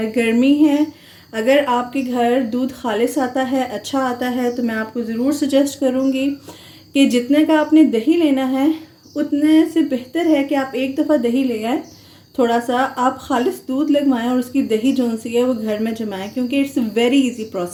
गर्मी है। अगर आपके घर दूध खालिस आता है, अच्छा आता है, तो मैं आपको ज़रूर सजेस्ट करूँगी कि जितने का आपने दही लेना है उतने से बेहतर है कि आप एक दफ़ा दही ले आएँ, थोड़ा सा आप खालिस दूध लगवाएं और उसकी दही जो सी है वो घर में जमाएं, क्योंकि इट्स वेरी इजी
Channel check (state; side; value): identical; both; correlation 1.00